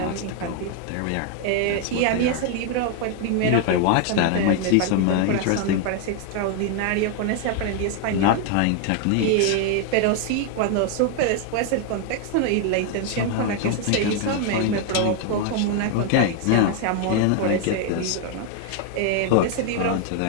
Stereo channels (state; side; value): different; both; correlation 0.00